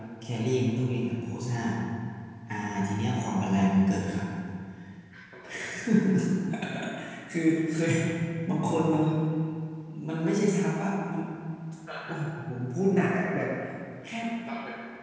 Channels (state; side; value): identical; both; correlation 1.00